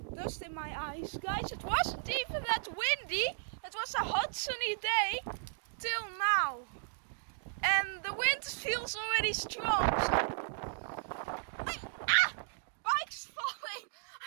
dust in my eyes. Guys, it wasn't even that windy. It was a hot sunny day till now. And the wind feels already strong. Bike's falling.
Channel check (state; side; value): silent; left; digital silence